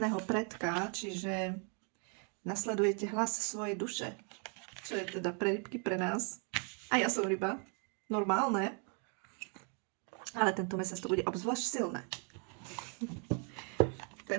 predka, čiže nasledujete hlas svojej duše, čo je teda pre rybky, pre nás. A ja som ryba, normálne, ale tento mesiac to bude obzvlášť silné.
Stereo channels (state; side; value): quieter; left; 39.6 dB